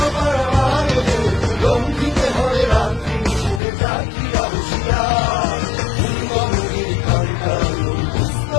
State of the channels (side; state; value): right; drops out; at 3.6 s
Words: পারাবারে লঙ্ঘিতে হবে রাত্রি নিষেধে জাকিরা হুঁশিয়ার দুর্গমগিরি কান্তার